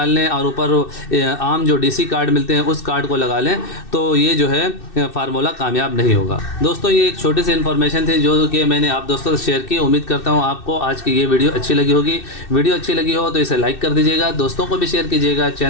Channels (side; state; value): right; late; 2.6 ms